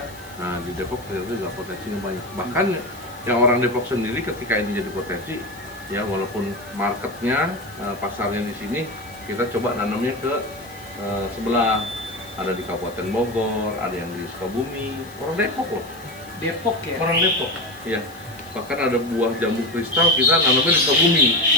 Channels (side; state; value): left; noise; hiss, 22 dB below the sound